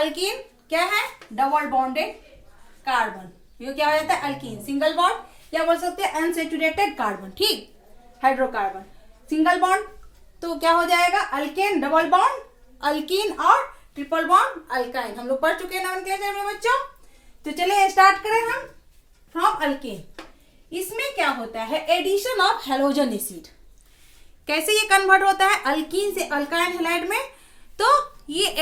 क्या है? Double bonded carbon. ये क्या हो जाता है? अल्कीन। सिंगल बॉन्ड या बोल सकते हैं अनसेचुरेटेड कार्बन। ठीक, हाइड्रोकार्बन। सिंगल बॉन्ड तो क्या हो जाएगा? अल्केन। डबल बॉन्ड अल्कीन और ट्रिपल बॉन्ड अल्काइन। हम लोग पढ़ चुके हैं नोमेनक्लेचर में बच्चों। तो चलिए स्टार्ट करें हम। फ्रॉम अल्केन, इसमें क्या होता है? Addition of halogen acid. कैसे ये कन्वर्ट होता है अल्कीन से अल्काइल हैलाइड में? तो ये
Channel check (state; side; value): identical; both; correlation 1.00